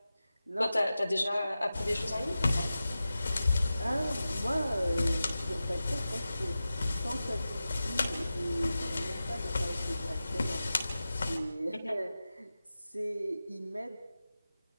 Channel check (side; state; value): both; inverted; correlation -0.94